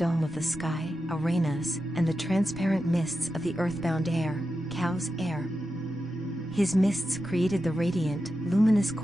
of the sky, URANUS, and the transparent mists of the earthbound air, Cow's air. His mists created the radiant, luminous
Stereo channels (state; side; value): normal; both; correlation 0.90